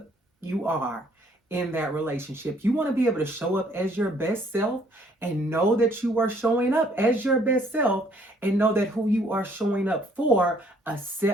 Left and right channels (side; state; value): both; normal; correlation 0.63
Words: you are in that relationship. You want to be able to show up as your best self and know that you are showing up as your best self and know that who you are showing up for